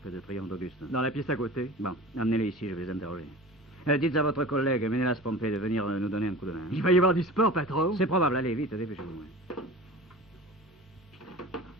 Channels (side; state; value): both; normal; correlation 0.37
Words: de Triomphe d'Auguste? Dans la pièce à côté. Bon, amenez-les ici, je vais les interroger. Dites à votre collègue Ménélas Pompée de venir nous donner un coup de main. Il va y avoir du sport, patron. C'est probable, allez, vite, dépêchez-vous.